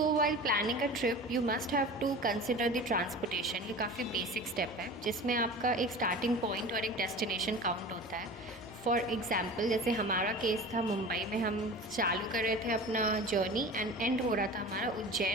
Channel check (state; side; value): normal; both; correlation 0.36